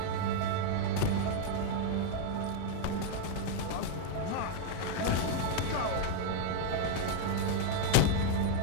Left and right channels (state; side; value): different; both; correlation 0.00